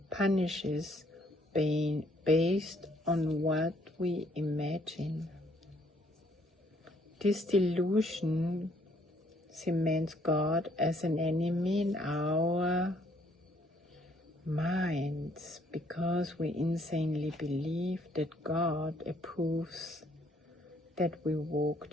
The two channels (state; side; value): normal; both; correlation 0.66